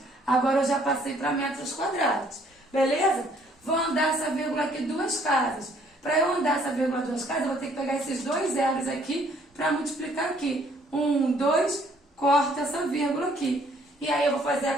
agora eu já passei para metros quadrados. Beleza? Vou andar essa vírgula aqui 2 casas. Para eu andar essa vírgula 2 casas, eu vou ter que pegar esses 2 zeros aqui para multiplicar aqui. 1, 2, corta essa vírgula aqui. E aí eu vou fazer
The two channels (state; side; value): normal; both; correlation 0.63